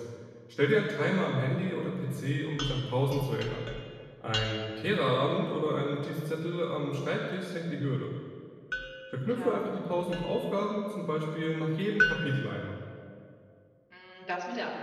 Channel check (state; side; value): identical; both; correlation 1.00